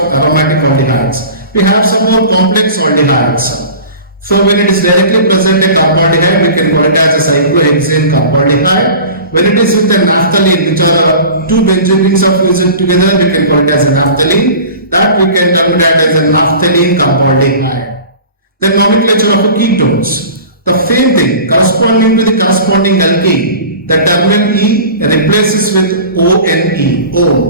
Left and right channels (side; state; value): both; inverted; correlation -0.38